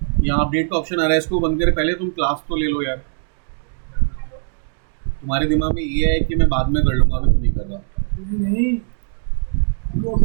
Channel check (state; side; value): silent; left; digital silence